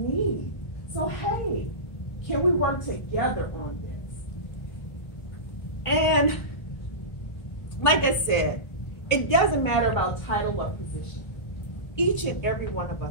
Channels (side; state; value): right; late; 1.5 ms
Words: So, hey, can we work together on this? And like I said, it doesn't matter about title or position. Each and every one of